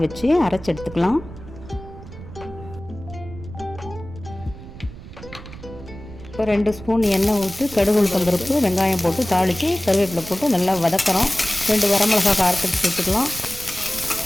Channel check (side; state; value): right; noise; rumble, 15 dB below the sound